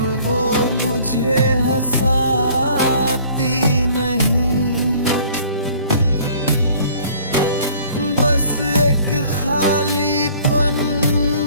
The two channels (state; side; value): inverted; both; correlation -0.53